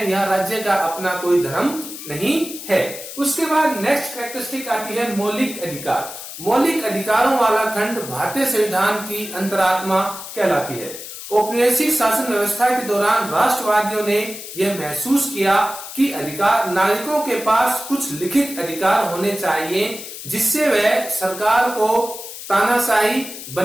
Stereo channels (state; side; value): noise; left; hiss, 11 dB below the sound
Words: यह राज्य का अपना कोई धर्म नहीं है। उसके बाद नेक्स्ट कैरेक्टरिस्टिक आती है मौलिक अधिकार। मौलिक अधिकारों वाला खंड भारतीय संविधान की अंतरात्मा कहलाती है। औपनिवेशिक शासन व्यवस्था के दौरान राष्ट्रवादियों ने यह महसूस किया कि अधिकार नागरिकों के पास कुछ लिखित अधिकार होने चाहिए जिससे वह सरकार को तानाशाही